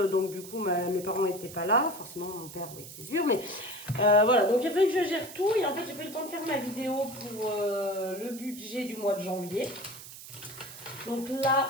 donc du coup mes parents n'étaient pas là, forcément mon père, oui c'est sûr, mais voilà, donc il a fallu que je gère tout et en fait j'ai pas eu le temps de faire ma vidéo pour le budget du mois de janvier. Donc là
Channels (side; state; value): right; noise; hiss, 14 dB below the sound